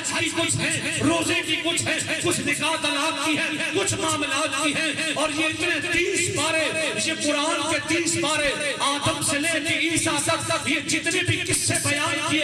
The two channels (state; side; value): identical; both; correlation 1.00